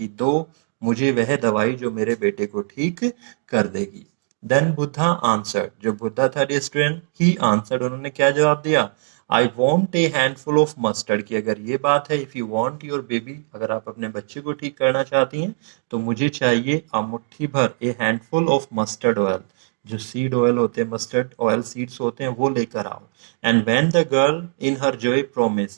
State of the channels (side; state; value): left; silent; 65 dB below the other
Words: दो मुझे वह दवाई जो मेरे बेटे को ठीक कर देगी। देन बुद्धा आंसर्ड, जो बुद्धा था स्टूडेंट, ही आंसर्ड, उन्होंने क्या जवाब दिया, I want A handful of mustard, की अगर ये बात है, if you want your baby, अगर आप अपने बच्चे को ठीक करना चाहती हैं, तो मुझे चाहिए मुट्ठी भर, ए हैंडफुल ऑफ मस्टर्ड ऑयल, जो सीड ऑयल होते हैं, मस्टर्ड ऑयल सीड्स होते हैं, वो लेकर आओ। And when the girl in her Joy